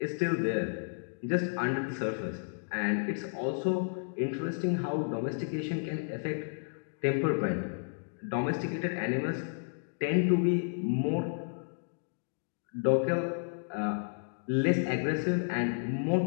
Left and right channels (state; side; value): silent; right; digital silence